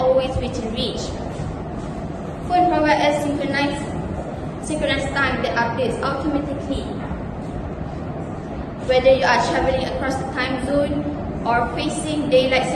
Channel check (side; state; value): both; identical; correlation 1.00